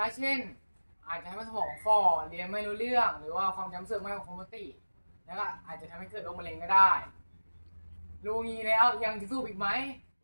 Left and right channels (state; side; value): inverted; both; correlation -1.00